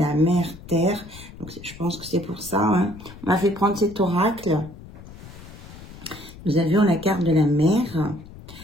mère terre. Donc, je pense que c'est pour ça. Hein. On m'a fait prendre cet oracle. Nous avions la carte de la mère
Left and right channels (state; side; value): noise; left; rumble, 17 dB below the sound